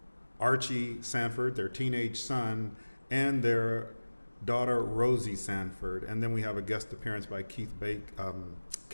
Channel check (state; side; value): inverted; both; correlation -1.00